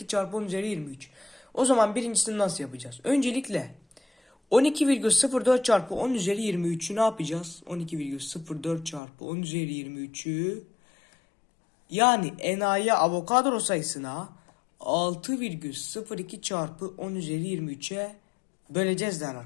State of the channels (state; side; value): drops out; right; at 9.0 s